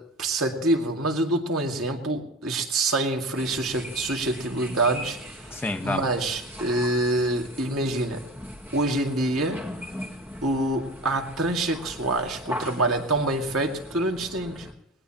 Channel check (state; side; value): normal; both; correlation 0.33